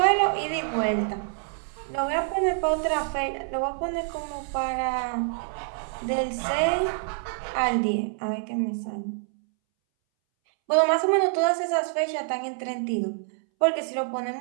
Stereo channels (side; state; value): left; silent; 61 dB below the other